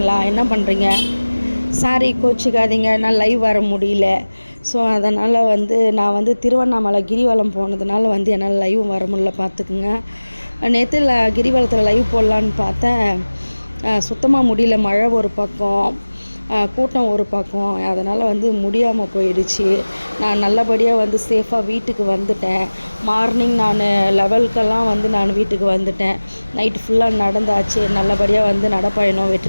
என்ன பண்ணுறீங்க? சாரி கோச்சிக்காதீங்க, நான் லைவ் வர முடியல. ஸோ அதனால் நான் திருவண்ணாமலை கிரிவலம் போனதுனால என்னால் லைவ் வர முடியல, பார்த்துக்குங்க. நேற்று கிரிவலத்தில் லைவ் போடலான்னு பார்த்தேன், சுத்தமாக முடியல. மழை ஒரு பக்கம், கூட்டம் ஒரு பக்கம், அதனால் முடியாமல் போயிடுச்சு. நான் நல்லபடியாக சேஃபாக வீட்டுக்கு வந்துட்டேன். மார்னிங் நான் 11க்கெல்லாம் நான் வீட்டுக்கு வந்துட்டேன். நைட்டு ஃபுல்லாக நடந்தாச்சு. நல்லபடியாக நடைப்பயணம்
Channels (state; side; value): inverted; both; correlation -1.00